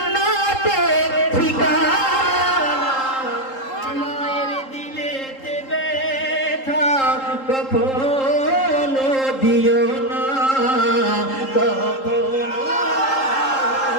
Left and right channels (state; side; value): late; right; 3.8 ms